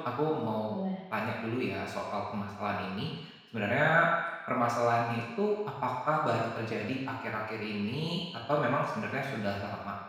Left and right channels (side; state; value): both; identical; correlation 1.00